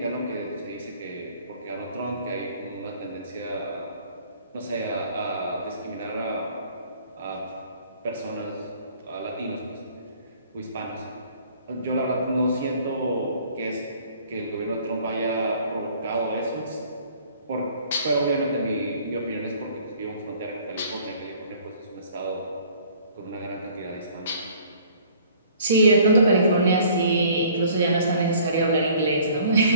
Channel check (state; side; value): inverted; both; correlation -0.55